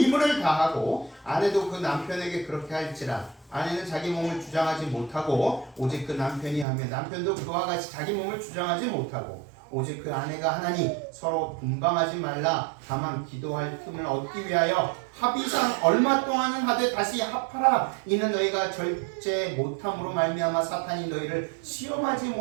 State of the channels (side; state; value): left; drops out; at 6.7 s